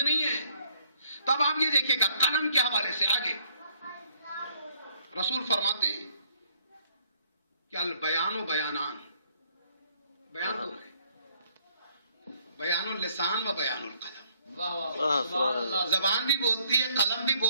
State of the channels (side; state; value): both; inverted; correlation -0.64